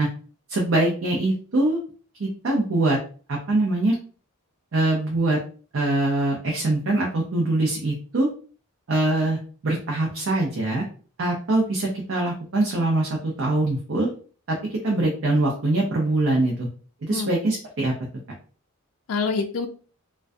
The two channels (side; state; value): both; normal; correlation 0.66